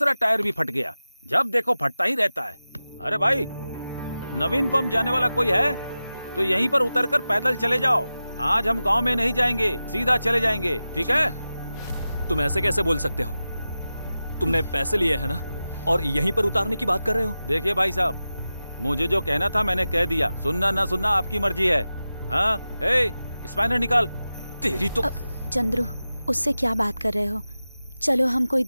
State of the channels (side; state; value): both; inverted; correlation -0.94